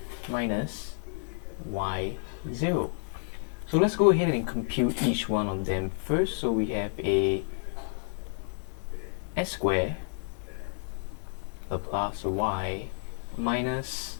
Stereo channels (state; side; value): silent; right; digital silence